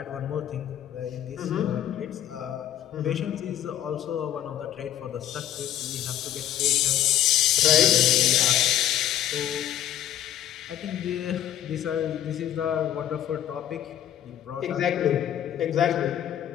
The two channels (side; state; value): right; quieter; 11.5 dB